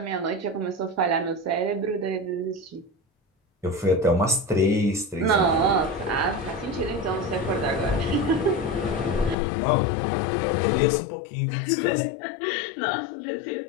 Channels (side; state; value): right; drops out; at 9.3 s